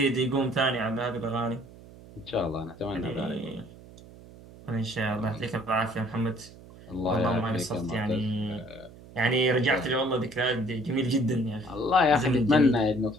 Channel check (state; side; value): noise; right; hum, 20 dB below the sound